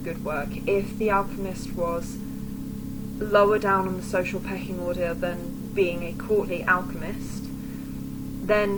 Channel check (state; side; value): identical; both; correlation 1.00